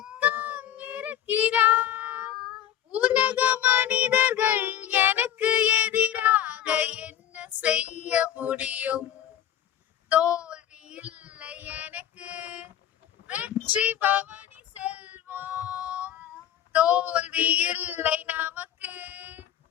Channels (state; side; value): quieter; right; 10.7 dB